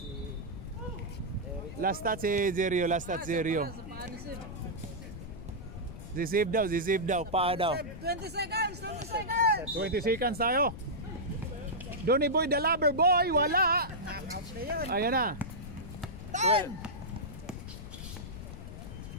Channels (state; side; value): noise; left; rumble, 11 dB below the sound